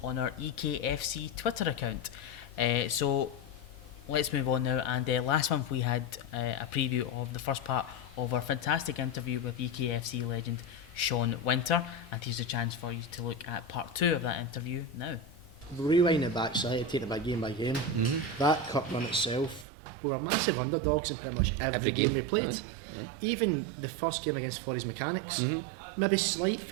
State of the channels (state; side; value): drops out; left; at 19.7 s